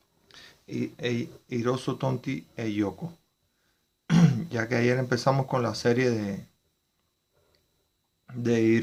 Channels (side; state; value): both; identical; correlation 1.00